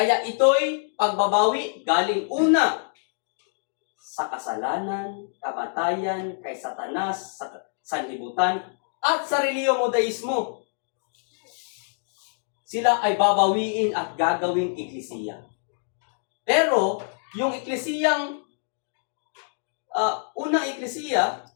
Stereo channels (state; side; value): silent; right; digital silence